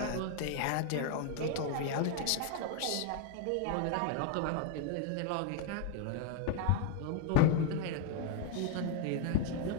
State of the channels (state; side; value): different; both; correlation 0.00